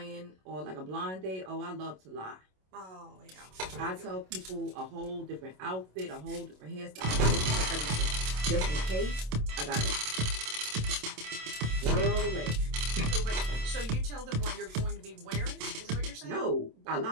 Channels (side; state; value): left; late; 27 ms